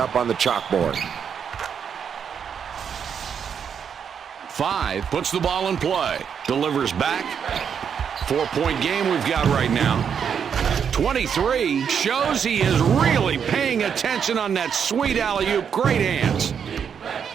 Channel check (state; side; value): quieter; left; 7.5 dB